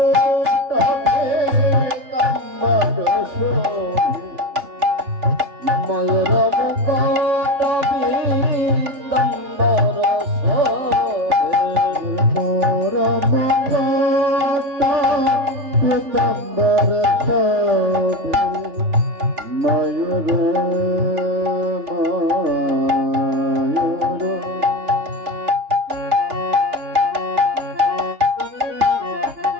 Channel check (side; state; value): left; late; 3.4 ms